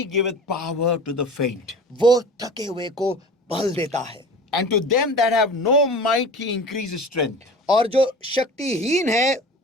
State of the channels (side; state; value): both; normal; correlation 0.38